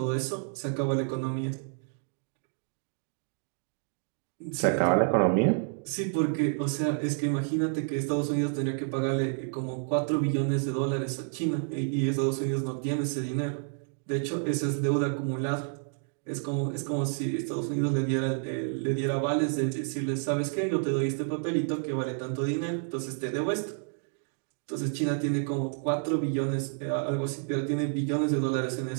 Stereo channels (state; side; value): silent; left; 58 dB below the other